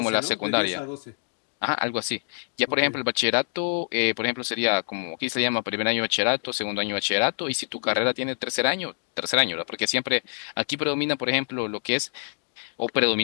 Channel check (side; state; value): right; silent; digital silence